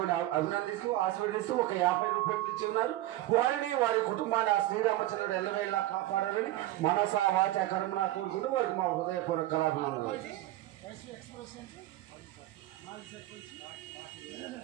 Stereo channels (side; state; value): left; quieter; 15.7 dB